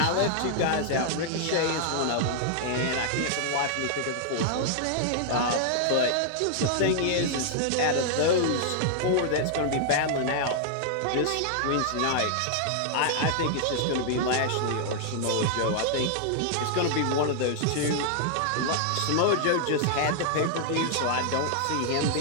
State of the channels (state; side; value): different; both; correlation -0.01